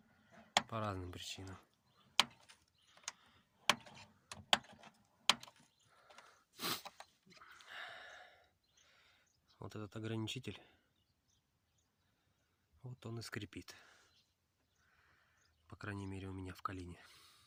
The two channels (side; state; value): both; identical; correlation 1.00